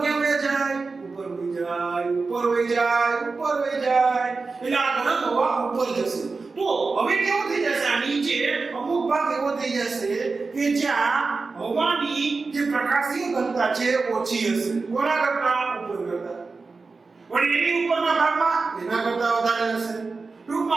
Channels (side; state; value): left; quieter; 4.1 dB